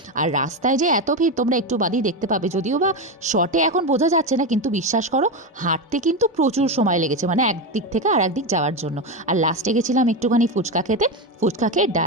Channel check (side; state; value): both; normal; correlation 0.14